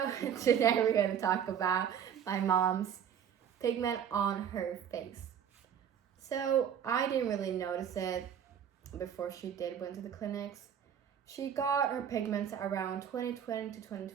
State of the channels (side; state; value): left; quieter; 8.6 dB